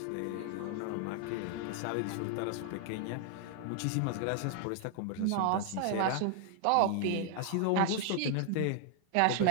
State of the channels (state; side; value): different; both; correlation 0.00